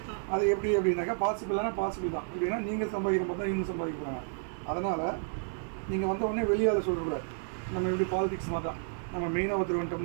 அது எப்படி அப்படின்னாக்கா பாசிபிளான பாசிபிள் தான். எப்படின்னா நீங்கள் சம்பாதிக்கிற மாதிரி தான் இவங்க சம்பாதிக்கிறாங்க. அதனால் நீங்கள் வந்த உடனே வெளியால் சொல்லக்கூடாது. நம்ம எப்படி பாலிடிக்ஸ் மாதிரி தான், நம்ம மெயினாக ஒருத்தர்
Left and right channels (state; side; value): silent; left; digital silence